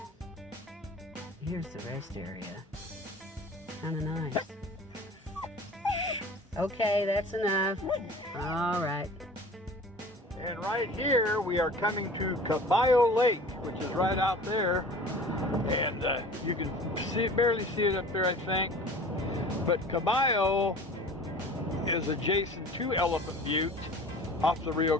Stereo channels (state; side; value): normal; both; correlation 0.42